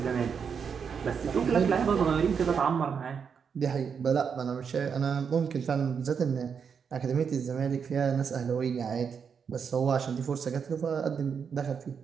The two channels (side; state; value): left; quieter; 6.6 dB